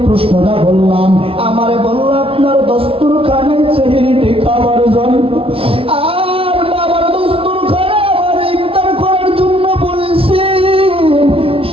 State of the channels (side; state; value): left; late; 0.27 ms